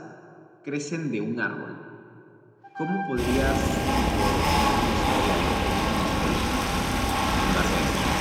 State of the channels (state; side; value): identical; both; correlation 1.00